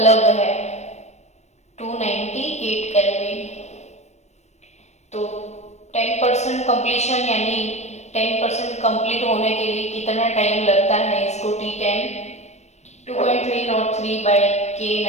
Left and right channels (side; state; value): right; late; 0.32 ms